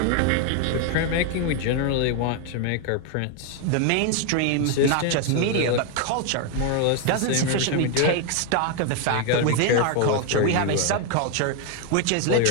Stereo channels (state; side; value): different; both; correlation 0.01